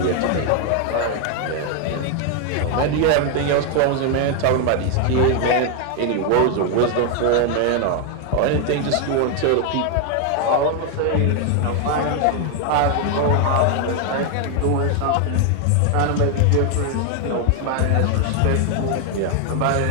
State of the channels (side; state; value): both; different; correlation 0.01